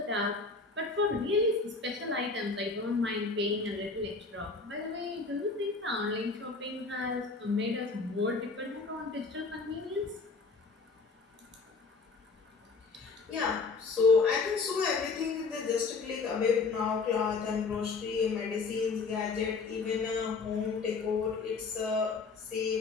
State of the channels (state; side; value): quieter; right; 4.3 dB